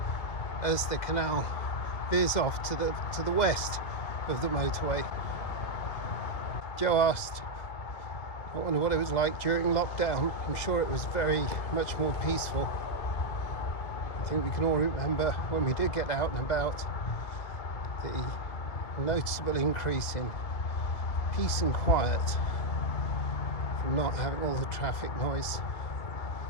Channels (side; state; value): right; late; 2.4 ms